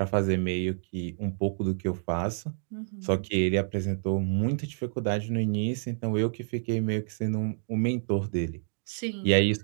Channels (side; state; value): left; silent; digital silence